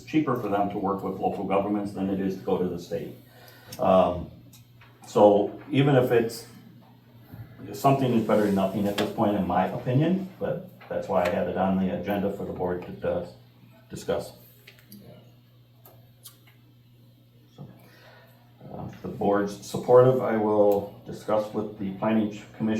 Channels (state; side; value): identical; both; correlation 1.00